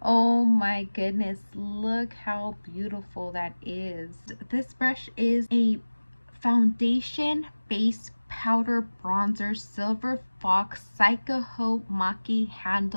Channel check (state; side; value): inverted; both; correlation -1.00